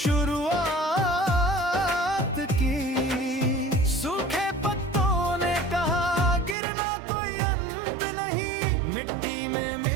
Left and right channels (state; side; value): drops out; left; at 6.6 s